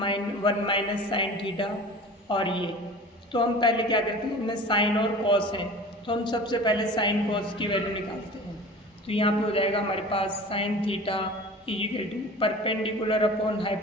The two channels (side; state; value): both; normal; correlation 0.40